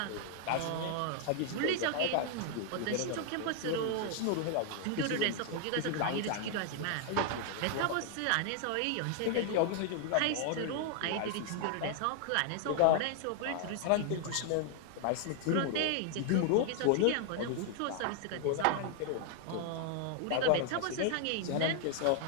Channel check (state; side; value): different; both; correlation 0.00